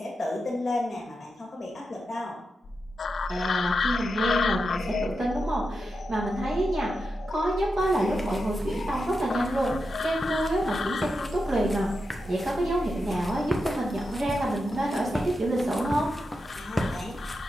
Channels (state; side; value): normal; both; correlation 0.88